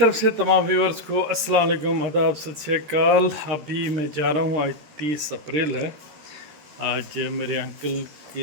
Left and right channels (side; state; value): left; late; 13 ms